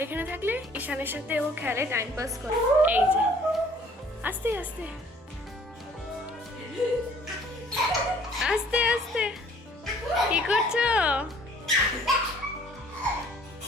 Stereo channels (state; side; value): normal; both; correlation 0.56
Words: এখানে থাকলে ঈশানের সাথে ও খেলে, টাইম পাস করে। এই যে আস্তে আস্তে আস্তে আস্তে কি করছো?